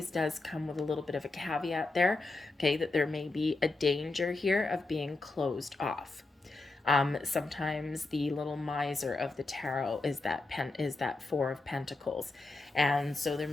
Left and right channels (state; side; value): quieter; right; 3.3 dB